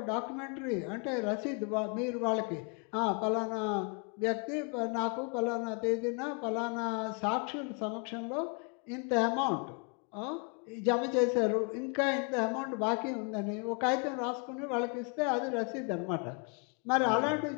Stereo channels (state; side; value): quieter; right; 36.1 dB